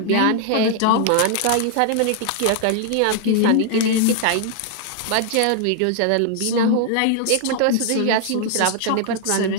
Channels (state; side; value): different; both; correlation 0.00